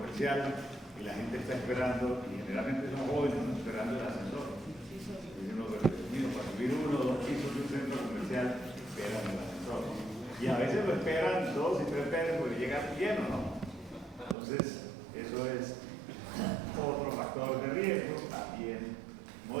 y la gente está esperando, y generalmente son jóvenes, ¿no? Esperando el ascensor. Y uno, para subir 1 o 2 pisos de un centro comercial, esperan el ascensor, ¿no? Y a veces lo esperan 2 y 3 veces porque llega lleno, ¿no? Entonces, eso es otro factor de riesgo, también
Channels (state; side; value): drops out; left; at 14.4 s